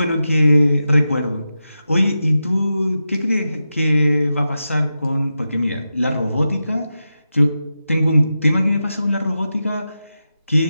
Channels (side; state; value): both; inverted; correlation -0.91